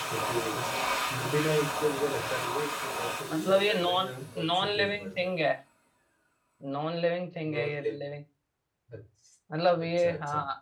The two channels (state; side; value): identical; both; correlation 1.00